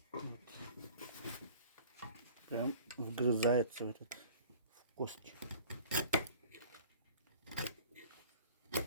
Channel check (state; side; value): inverted; both; correlation -0.46